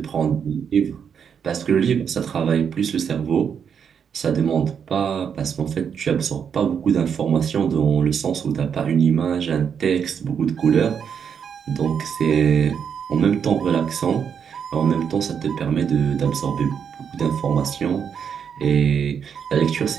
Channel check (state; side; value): quieter; left; 7.4 dB